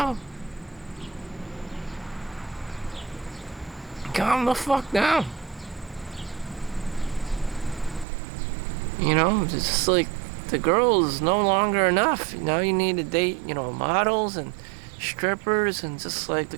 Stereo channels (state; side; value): drops out; left; at 8.1 s